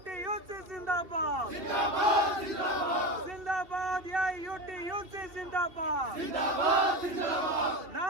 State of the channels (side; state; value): left; late; 2.7 ms